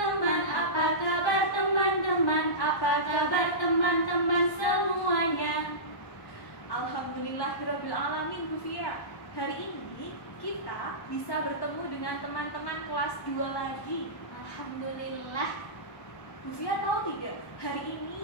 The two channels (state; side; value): late; right; 1.1 ms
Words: Apa kabar teman-teman? Apa kabar teman-teman semuanya? Alhamdulillahirabbil alamin, Bu Fia. Hari ini kita bisa bertemu dengan teman-teman kelas 2 lagi. Alhamdulillah. Bu Fia tahu tidak, hari